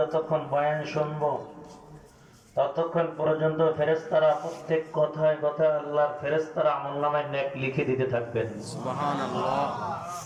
বয়ান শুনবো, ততক্ষণ পর্যন্ত ফেরেশতারা প্রত্যেক কথায় কথায় আল্লাহর ফেরেশতারা আমলনামায় নেক লিখে দিতে থাকবেন। সুবহানাল্লাহ।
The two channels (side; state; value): both; identical; correlation 1.00